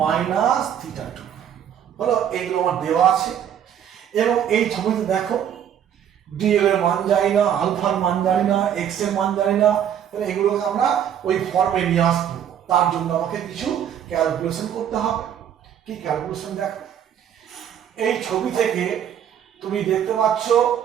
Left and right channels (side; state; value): left; quieter; 9.5 dB